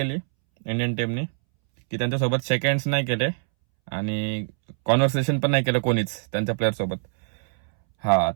इंडियन टीमनी की त्यांच्यासोबत सेकंड्स नाही केले आणि कॉन्व्हर्सेशन पण नाही केलं कोणीच त्यांच्या प्लेअर सोबत. हा,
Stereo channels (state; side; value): silent; left; 62 dB below the other